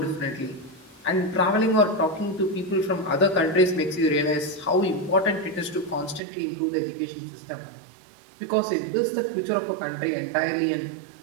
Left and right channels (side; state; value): left; drops out; at 6.2 s